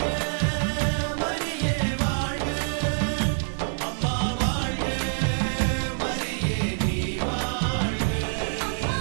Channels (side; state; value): left; silent; 61 dB below the other